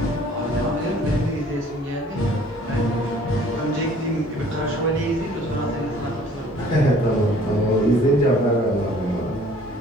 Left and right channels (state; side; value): normal; both; correlation 0.54